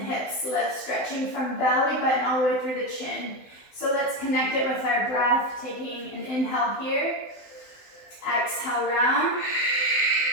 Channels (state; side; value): late; right; 16 ms